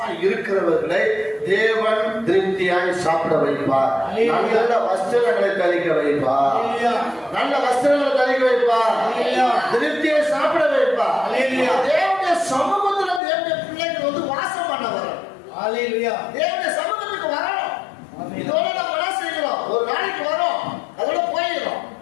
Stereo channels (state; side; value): drops out; right; at 13.2 s